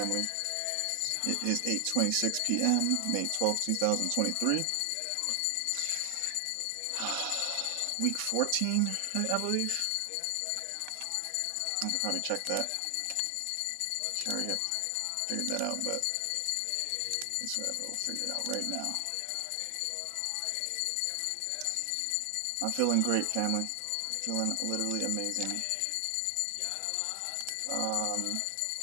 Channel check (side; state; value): both; different; correlation 0.00